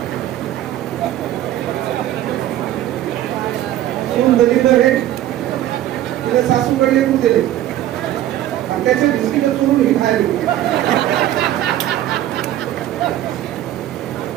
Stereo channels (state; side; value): quieter; left; 13.0 dB